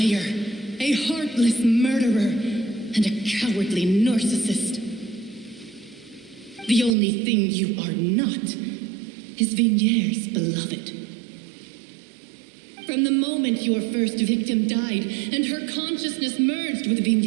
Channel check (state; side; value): drops out; left; at 7.0 s